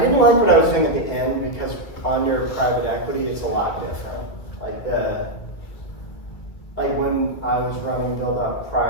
like what I was doing at the end, because under private equity, it's a lot different. Like like when I was running Build Up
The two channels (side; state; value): right; late; 1.8 ms